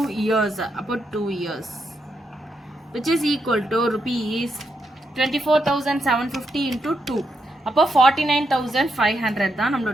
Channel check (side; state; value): both; normal; correlation 0.82